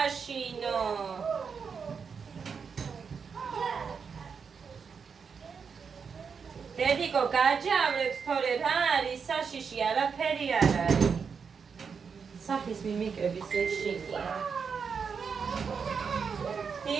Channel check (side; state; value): left; quieter; 6.0 dB